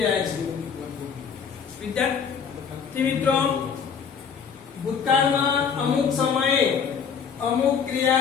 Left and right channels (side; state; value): right; quieter; 6.7 dB